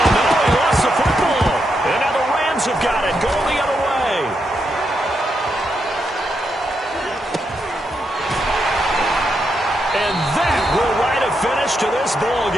no, he lost the football. And now the Rams have got it, going the other way. And that will write a finish to this ball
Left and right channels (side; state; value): both; normal; correlation 0.82